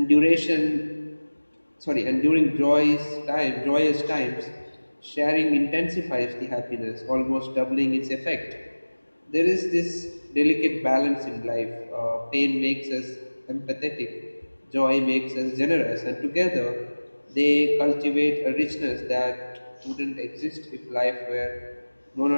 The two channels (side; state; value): both; inverted; correlation -1.00